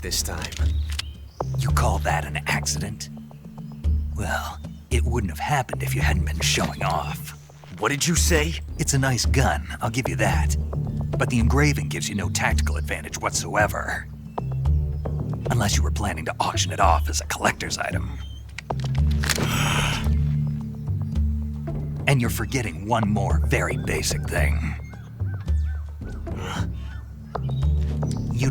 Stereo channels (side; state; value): both; identical; correlation 1.00